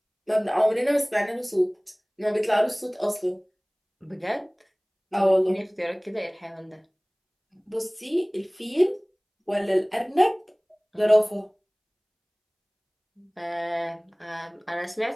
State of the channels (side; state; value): both; identical; correlation 1.00